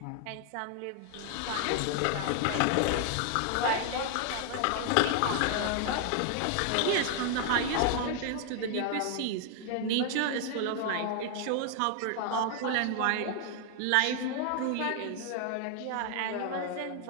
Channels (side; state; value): both; different; correlation 0.00